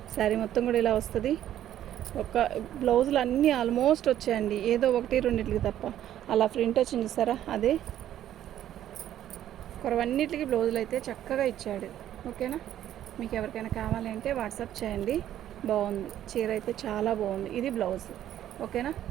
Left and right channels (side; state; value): left; quieter; 11.7 dB